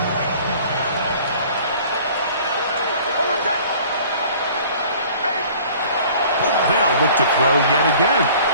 They'll look to throw yet again.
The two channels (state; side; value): inverted; both; correlation -0.50